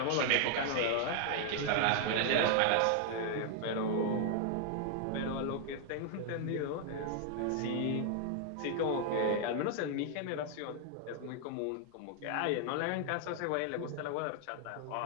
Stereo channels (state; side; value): different; both; correlation 0.00